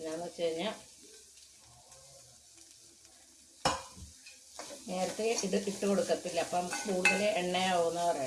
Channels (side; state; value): both; identical; correlation 1.00